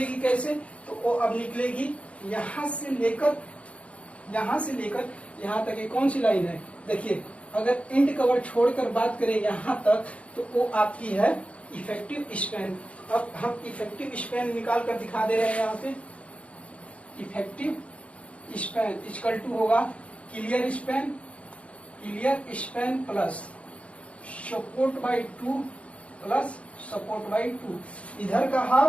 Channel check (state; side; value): late; right; 0.063 ms